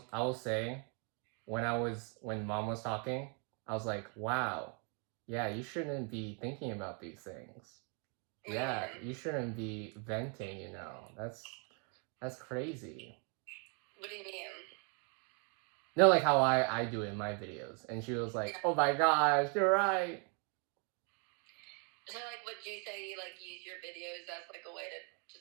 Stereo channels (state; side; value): quieter; left; 37.4 dB